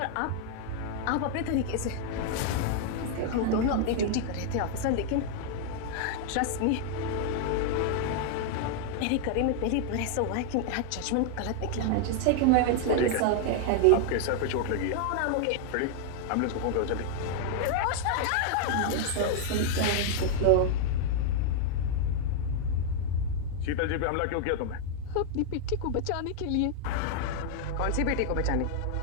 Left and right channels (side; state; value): both; different; correlation 0.00